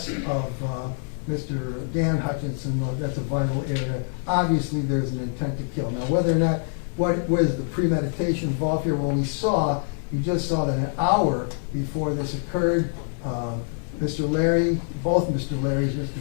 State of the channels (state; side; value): silent; right; 62 dB below the other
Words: of Mr. Dan Hutchinson. That's a vital area. Obviously, there's an intent to kill. Now, whether or not, what was the premeditation involved here? Well, you just saw that an hour before this occurred, Mr. Larry, both Mr. Larrys, Mr.